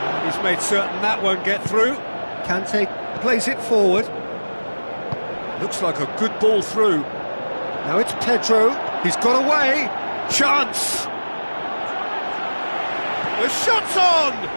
He's made certain that won't get through. Kante plays it forward. Looks like a good ball through. Now it's Pedro. He's got away. Chance. The shot's on.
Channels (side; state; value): both; inverted; correlation -1.00